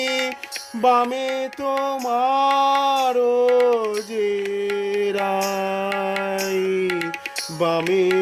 বামে তোমার যে রাই, বামে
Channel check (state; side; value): identical; both; correlation 1.00